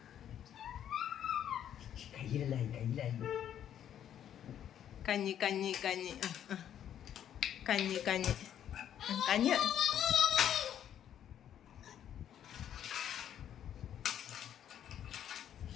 കഞ്ഞി കഞ്ഞി കഞ്ഞി കഞ്ഞി കഞ്ഞി കഞ്ഞി.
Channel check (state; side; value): quieter; right; 10.1 dB